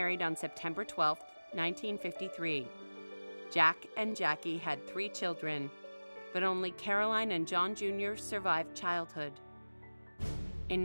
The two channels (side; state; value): both; inverted; correlation -1.00